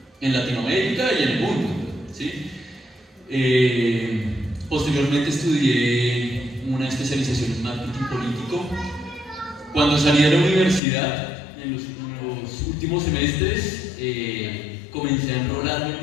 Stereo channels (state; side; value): drops out; right; at 10.8 s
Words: en Latinoamérica y en el mundo, ¿sí? Posteriormente estudié una especialización en marketing político. Cuando salí de la universidad, en los últimos semestres, comencé a enrolarme